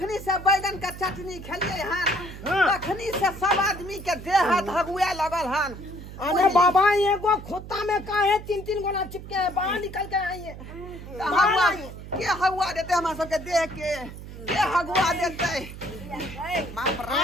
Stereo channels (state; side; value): noise; right; hum, 13 dB below the sound